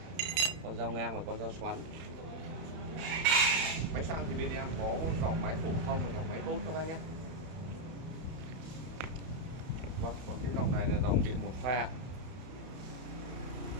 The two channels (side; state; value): left; late; 31 ms